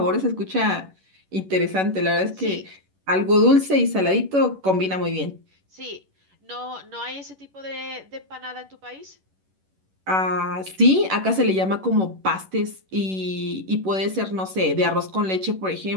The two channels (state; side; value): late; left; 11 ms